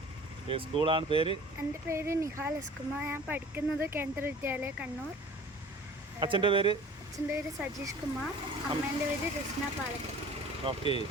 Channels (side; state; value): both; normal; correlation 0.45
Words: സ്കൂളാണ് പേര്? എൻ്റെ പേര് നിഹാൽ എസ് കുമാർ. ഞാൻ പഠിക്കുന്നത് കേന്ദ്ര വിദ്യാലയ കണ്ണൂർ. അച്ഛൻ്റെ പേര്? അച്ഛൻ്റെ പേര് സജീഷ് കുമാർ. അമ്മേൻ്റെ പേര് രശ്ന പാലക്കൽ. ഓക്കെ,